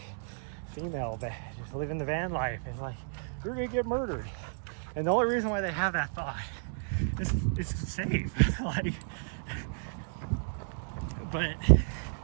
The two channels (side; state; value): left; silent; digital silence